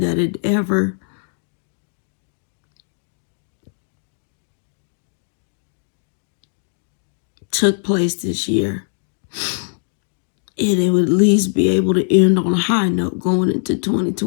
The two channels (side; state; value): right; silent; digital silence